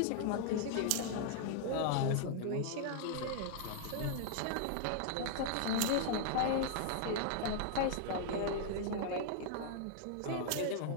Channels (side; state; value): both; different; correlation -0.01